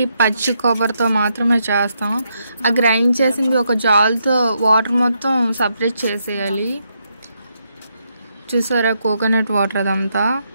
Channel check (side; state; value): both; inverted; correlation -0.79